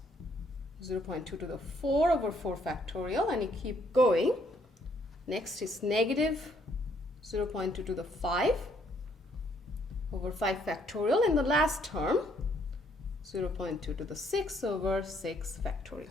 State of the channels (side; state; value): both; normal; correlation 0.68